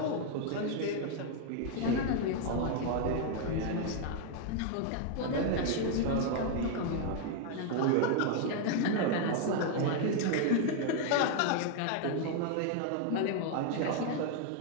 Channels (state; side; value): different; both; correlation 0.00